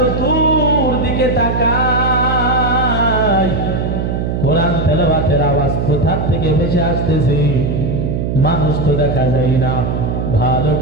তাকায়, কোরআন তেলাওয়াতের আওয়াজ কোথা থেকে ভেসে আসতেছে, মানুষ তো দেখা যায় না। ভালো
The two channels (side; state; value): right; noise; hum, 1 dB below the sound